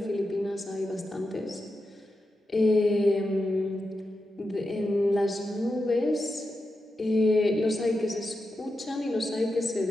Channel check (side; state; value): both; normal; correlation 0.89